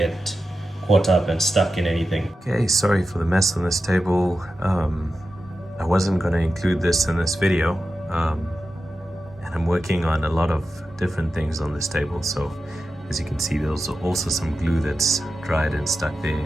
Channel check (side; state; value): both; normal; correlation 0.92